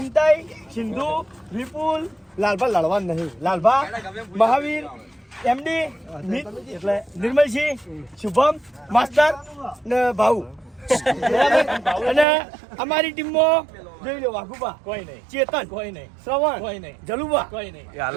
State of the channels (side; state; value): left; drops out; at 12.2 s